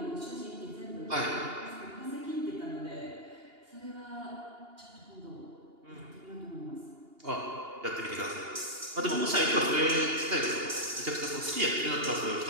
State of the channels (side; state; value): left; late; 2.8 ms